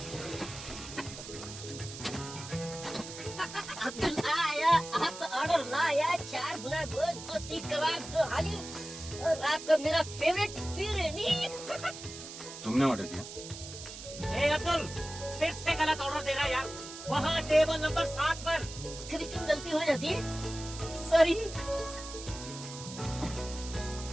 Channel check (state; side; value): noise; right; hiss, 12 dB below the sound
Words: ऑर्डर लाया 4 गुना गोश्त, 2 सीख कबाब, 2 हाली और आपका मेरा फेवरेट फिरनी। तुमने ऑर्डर किया? ए अब्दुल, फिर से गलत ऑर्डर दे रहा है यार। वहाँ टेबल नंबर 7 पर। कभी क्यों गलती हो जाती है? सॉरी।